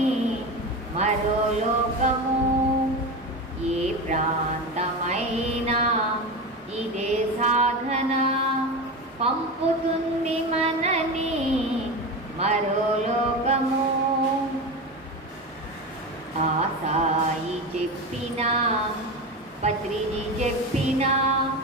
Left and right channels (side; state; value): both; normal; correlation 0.23